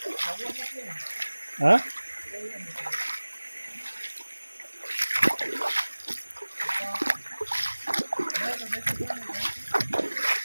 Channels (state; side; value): inverted; both; correlation -1.00